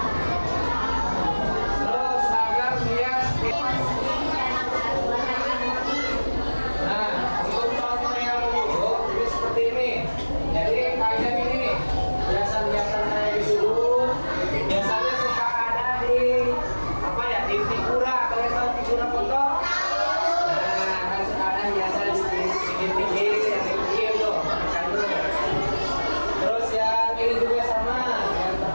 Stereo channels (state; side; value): inverted; both; correlation -1.00